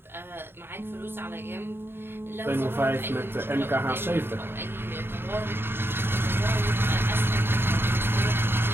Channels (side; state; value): left; late; 0.11 ms